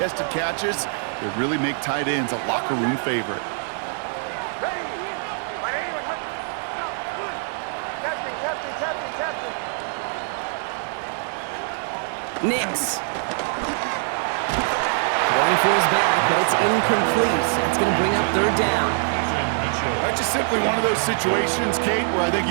catches, that really make tight ends a locker room favorite. Nix. Going for his back, but it's incomplete. That's going to bring up 3rd down. That's just simply one of those situations, Kate, where I think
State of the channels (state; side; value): silent; left; 63 dB below the other